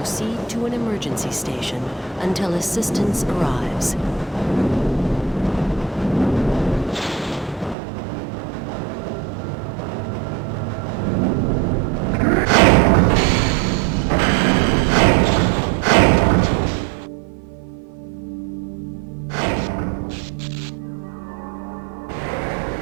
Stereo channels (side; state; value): left; drops out; at 7.8 s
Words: to an emergency station until assistance arrives.